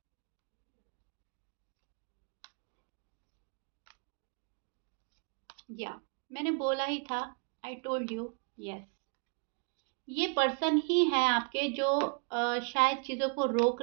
या मैंने बोला ही था, आई टोल्ड यू, यस। ये पर्सन ही है आपके जो शायद चीज़ों को रोक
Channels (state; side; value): quieter; left; 38.0 dB